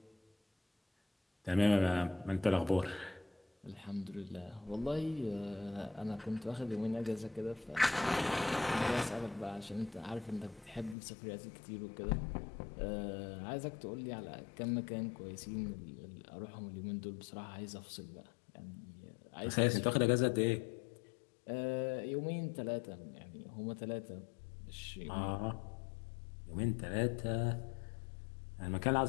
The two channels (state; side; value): drops out; right; at 11.0 s